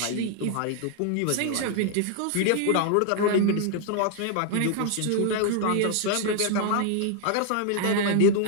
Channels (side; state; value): both; different; correlation 0.00